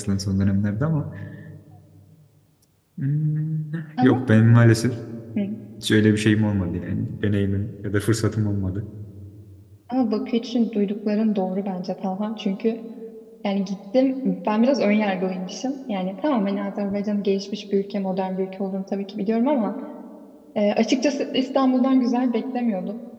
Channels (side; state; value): both; identical; correlation 1.00